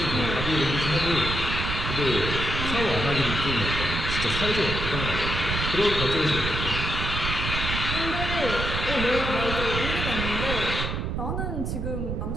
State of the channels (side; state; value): right; noise; rumble, 3 dB below the sound